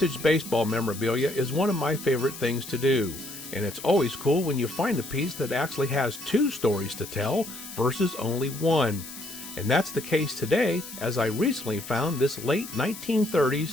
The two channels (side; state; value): left; noise; hiss, 12 dB below the sound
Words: baseball memorabilia is one of my favorite things to do, and it's always cool when you find a piece that actually has two stories to tell versus only one. And that's the case today, as I recently found this late